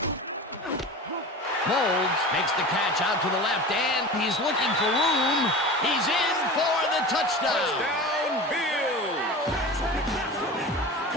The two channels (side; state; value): both; normal; correlation 0.33